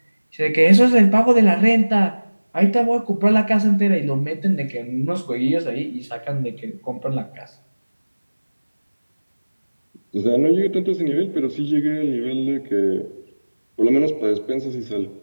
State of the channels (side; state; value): both; inverted; correlation -1.00